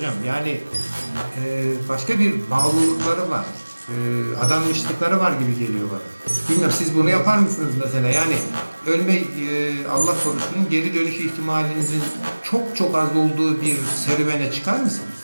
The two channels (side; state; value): both; inverted; correlation -1.00